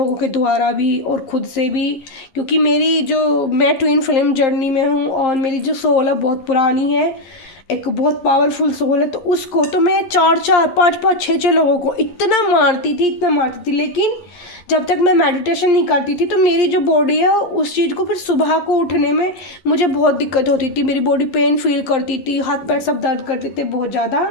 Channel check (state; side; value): late; right; 11 ms